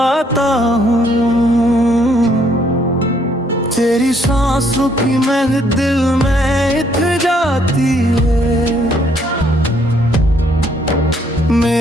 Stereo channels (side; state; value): both; normal; correlation 0.68